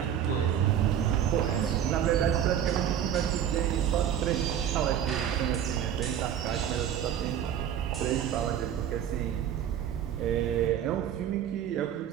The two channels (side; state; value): left; quieter; 9.7 dB